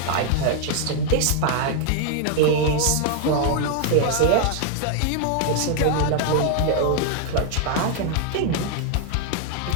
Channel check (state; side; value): different; both; correlation 0.00